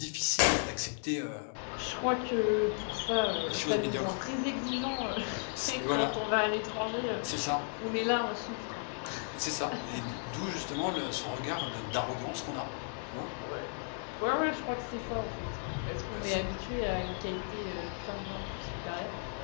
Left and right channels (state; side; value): silent; right; 55 dB below the other